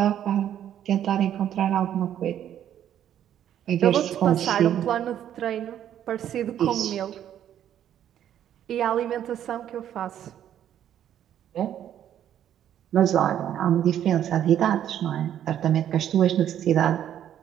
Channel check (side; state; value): left; quieter; 10.5 dB